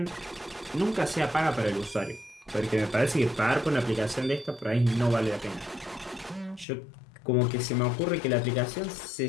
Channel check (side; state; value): right; drops out; at 6.7 s